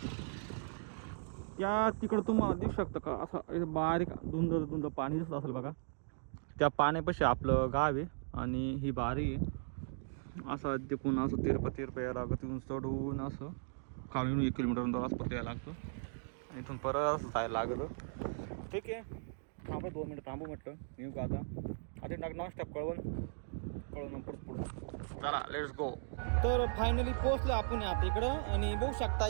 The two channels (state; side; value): silent; left; digital silence